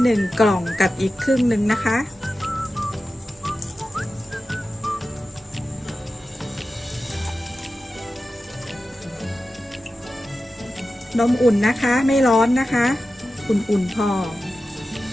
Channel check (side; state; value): both; normal; correlation 0.93